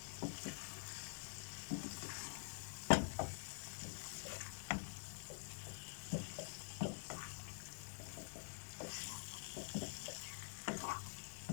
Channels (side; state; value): right; silent; digital silence